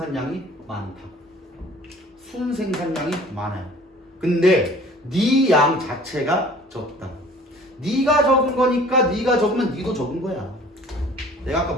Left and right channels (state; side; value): normal; both; correlation 0.50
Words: 많다. 순생산량이 많아요. 근데 네 양 자체가 적다. 네가 적은 거니까 네가 적으면 네도 적은 거야. 내가 아까